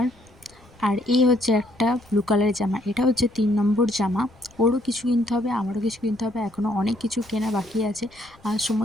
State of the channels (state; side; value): noise; left; rumble, 26 dB below the sound